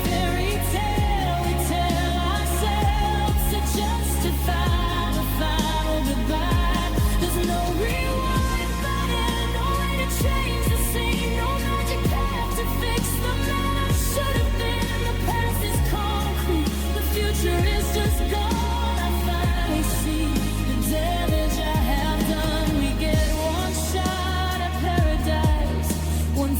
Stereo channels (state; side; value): identical; both; correlation 1.00